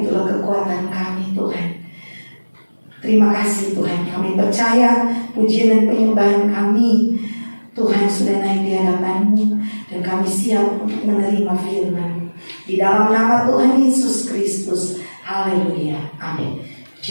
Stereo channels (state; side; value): inverted; both; correlation -1.00